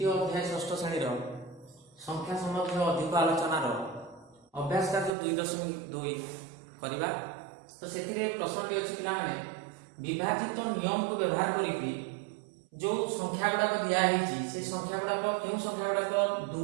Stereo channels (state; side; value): drops out; left; at 5.1 s